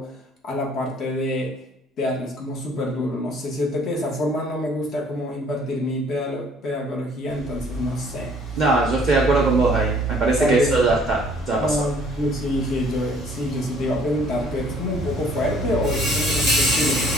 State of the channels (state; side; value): normal; both; correlation 0.58